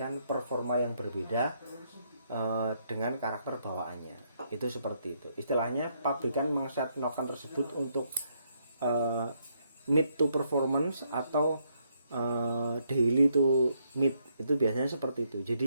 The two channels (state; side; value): inverted; both; correlation -0.74